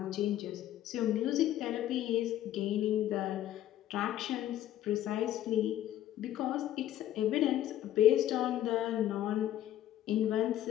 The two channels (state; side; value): quieter; right; 12.5 dB